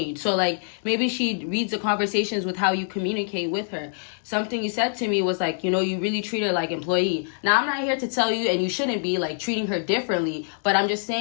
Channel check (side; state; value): right; silent; 62 dB below the other